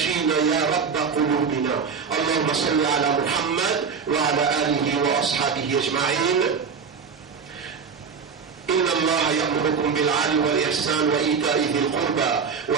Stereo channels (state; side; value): quieter; left; 5.9 dB